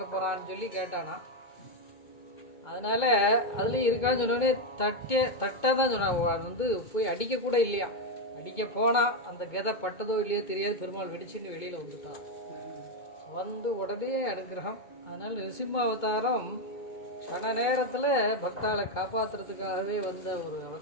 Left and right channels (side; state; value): right; late; 2.2 ms